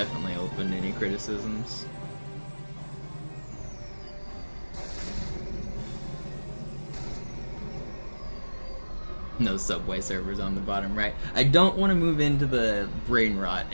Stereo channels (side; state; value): both; inverted; correlation -1.00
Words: open to any criticisms. No Subway servers on the bottom right. I don't want to move into the brain rot